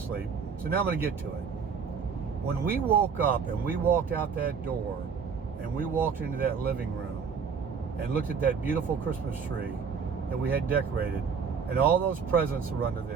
So now I'm going to get to it. When we woke up and we walked out that door and we walked into that living room and looked at that beautiful Christmas tree that we had decorated and all those presents were under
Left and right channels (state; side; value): quieter; left; 6.1 dB